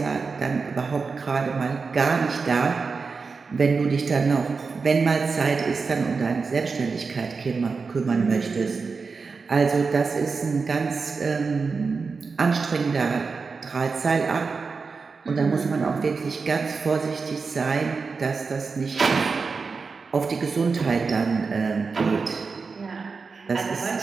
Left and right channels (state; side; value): quieter; left; 4.7 dB